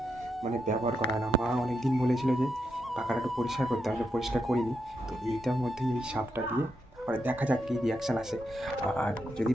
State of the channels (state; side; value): normal; both; correlation 0.83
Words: ব্যবহার করা না। মা অনেক দিন বলেছিল যে পাখাটা একটু পরিষ্কার করতে হবে, পরিষ্কার করিনি। তো এইটার মধ্যে এই সাপটা দিয়ে তারপরে দেখা যাক কী রিয়াকশান আসে। আর যদি